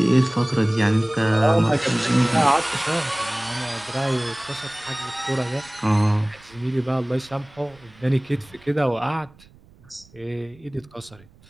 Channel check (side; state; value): right; noise; rumble, 26 dB below the sound